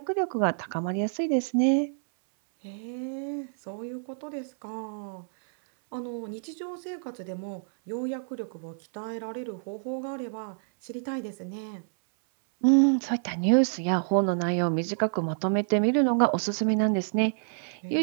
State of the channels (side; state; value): left; silent; 59 dB below the other